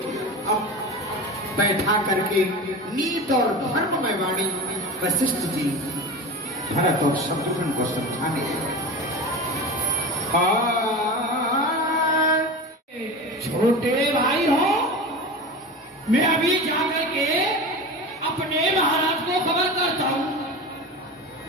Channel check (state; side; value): normal; both; correlation 0.29